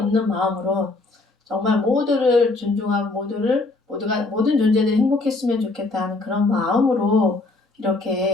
마음으로 정말 모두를 존중하고 모든 존재들이 행복했으면 좋겠다는 그런 마음으로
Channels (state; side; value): quieter; right; 3.3 dB